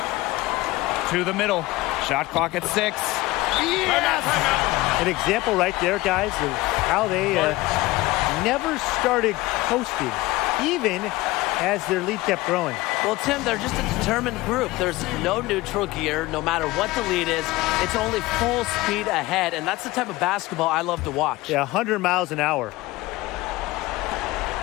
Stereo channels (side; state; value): right; quieter; 19.4 dB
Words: To the middle. Shot clock at 6. Yes! An example right there, guys, of how they never started coasting, even as their lead kept growing. Well, Tim, they're just a determined group. There's no neutral gear. No matter what the lead is, it's only full speed ahead, and that's the type of basketball I love to watch. Yeah, 100 miles an hour.